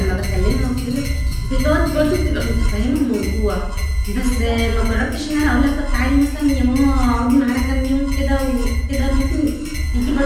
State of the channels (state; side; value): identical; both; correlation 1.00